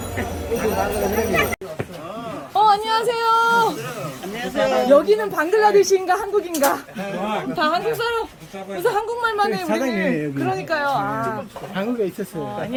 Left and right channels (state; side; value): identical; both; correlation 1.00